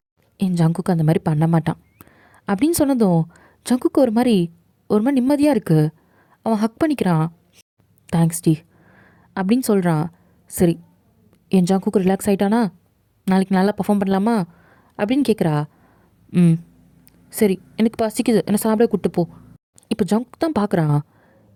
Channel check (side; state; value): both; identical; correlation 1.00